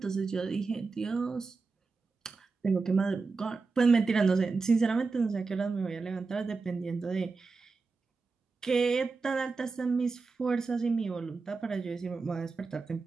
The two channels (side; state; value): left; quieter; 4.3 dB